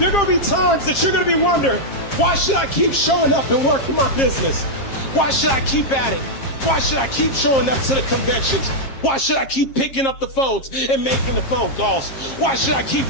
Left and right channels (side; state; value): right; late; 7.4 ms